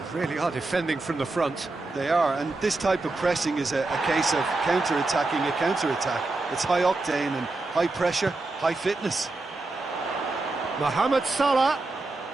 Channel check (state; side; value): quieter; left; 3.2 dB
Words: really are defending from the front. They are, and this type of pressing is a case of counter-attacking a counter-attack. It's high octane and high pressure, high fitness. Mohamed Salah.